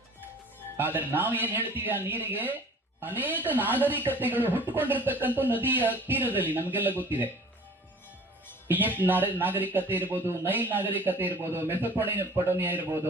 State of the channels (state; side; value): normal; both; correlation 0.47